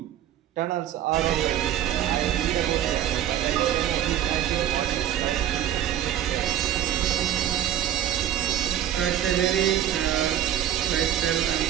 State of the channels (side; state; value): left; quieter; 11.2 dB